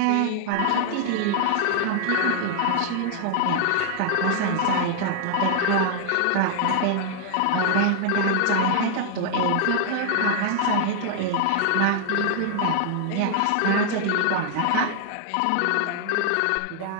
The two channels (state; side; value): different; both; correlation 0.00